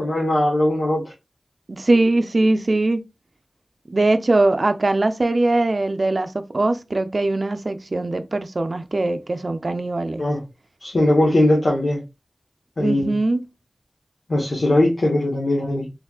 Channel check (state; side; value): normal; both; correlation 0.96